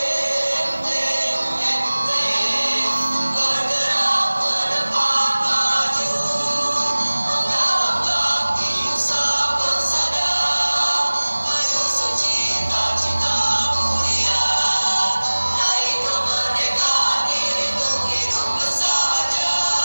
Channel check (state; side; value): inverted; both; correlation -1.00